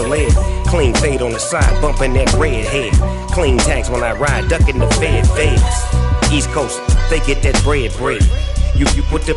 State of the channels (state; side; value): identical; both; correlation 1.00